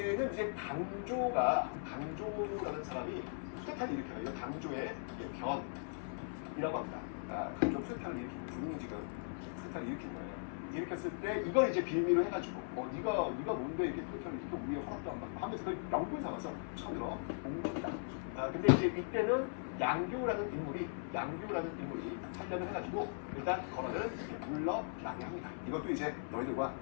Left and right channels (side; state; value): right; silent; 52 dB below the other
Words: 이제 강조라는 사람이 쿠데타를 일으켜요. 이건 강조의 변이라고 합니다. 강조 쿠데타를 일으킨 군인이 지금 쿠데타를 일으킨 거예요. 일으켰을 때 이걸 이제 빌미로 해가지고 네가 뭔데 이렇게 쿠데타를 일으켜 우리의 허락도 안 받고 하면서 그걸 명분 삼아서 처음으로 몽골이다. 근데 이제 이때는 양교라는 인물이 하려면 해가지고 일단 건어를 이렇게 물러나게 합니다. 이것도 이제 너희들과